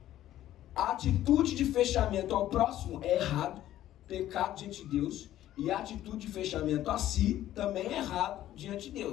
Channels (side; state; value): right; quieter; 13.1 dB